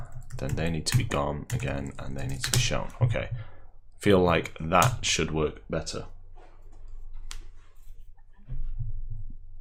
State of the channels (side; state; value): both; identical; correlation 1.00